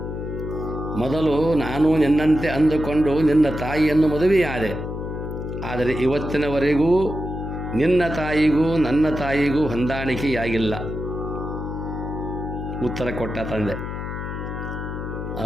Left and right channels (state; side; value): noise; left; hum, 6 dB below the sound